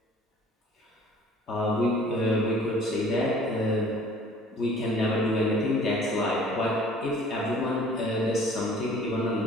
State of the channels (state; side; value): normal; both; correlation 0.51